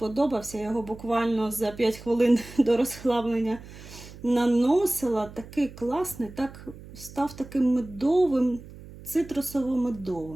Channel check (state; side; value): noise; right; hum, 17 dB below the sound